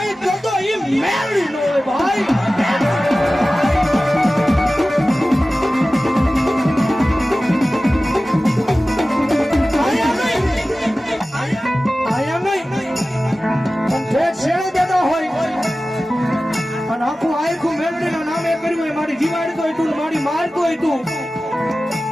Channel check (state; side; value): normal; both; correlation 0.96